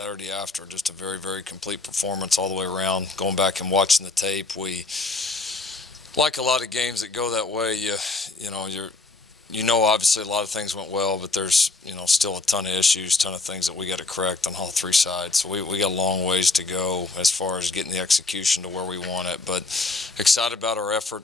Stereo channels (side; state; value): right; quieter; 3.4 dB